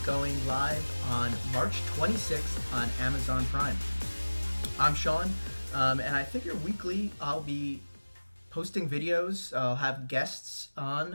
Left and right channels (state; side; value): inverted; both; correlation -1.00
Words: going live on March 26th on Amazon Prime. I'm Sean, and I figure weekly I'll be posting videos, I'll have guests